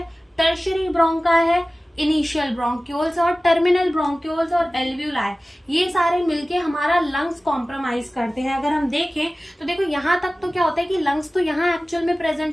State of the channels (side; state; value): both; normal; correlation 0.97